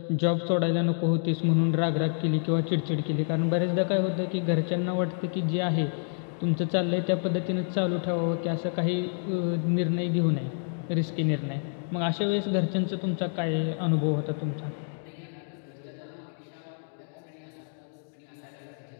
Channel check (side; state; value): right; silent; 59 dB below the other